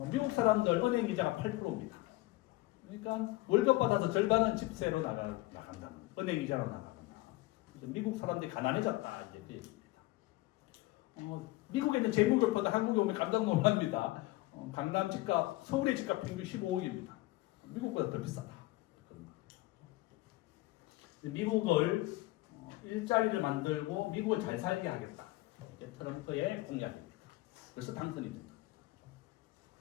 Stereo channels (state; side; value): quieter; right; 19.4 dB